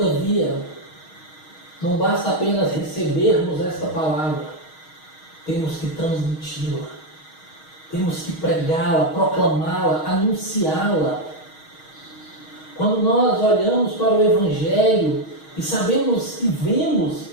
não basta apenas recebermos esta palavra, temos que transmiti-la, temos que pregá-la, proclamá-la, anunciá-la. Quando nós olhamos para o Evangelho e sabemos e vemos,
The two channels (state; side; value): late; right; 6.4 ms